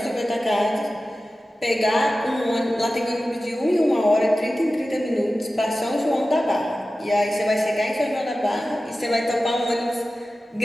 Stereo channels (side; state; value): both; normal; correlation 0.95